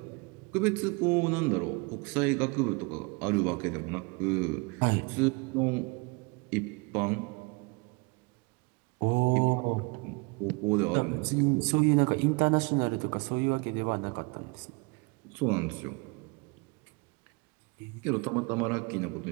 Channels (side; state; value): left; quieter; 28.9 dB